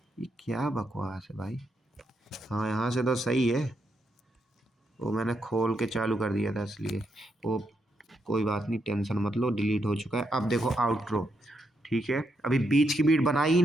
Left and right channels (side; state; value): both; normal; correlation 0.80